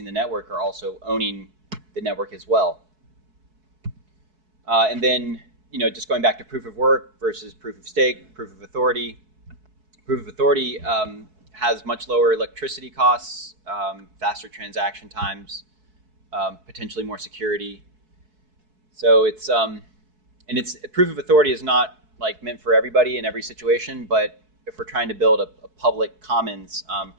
the network are also owning the network as well. And then, you know, just going back to proof of work versus proof of stake, proof of authority. Proof of authority has much lower electricity costs, faster transaction times, potentially more security. So it's proof of authority is not like meant for everybody in every situation, but if we're trying to build a public commons,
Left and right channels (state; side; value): late; left; 4.6 ms